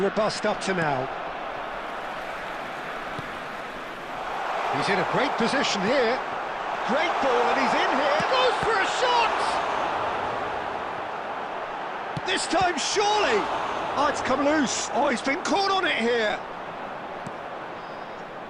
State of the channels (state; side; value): identical; both; correlation 1.00